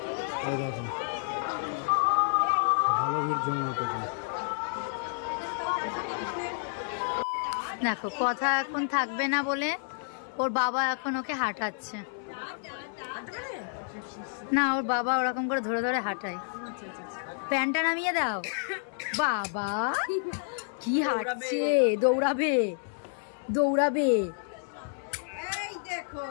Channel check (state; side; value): silent; right; 58 dB below the other